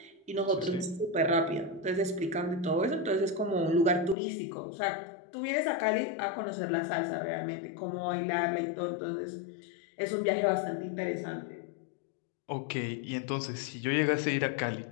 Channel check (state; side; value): drops out; right; at 4.2 s